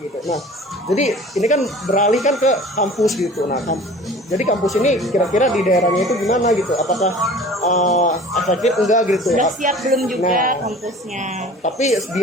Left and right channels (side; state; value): both; normal; correlation 0.44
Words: gitu. Nah jadi ini kan beralih kan ke kampus gitu. Nah jadi kampus ini kira-kira di daerahnya itu gimana gitu, apakah efektif enggak gitu. Sudah siap belum juga kampusnya. Tapi